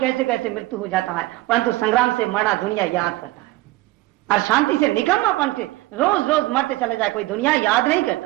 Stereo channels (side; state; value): left; quieter; 18.7 dB